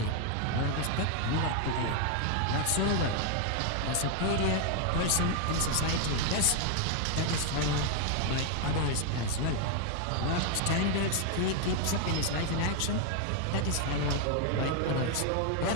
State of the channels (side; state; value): both; different; correlation 0.00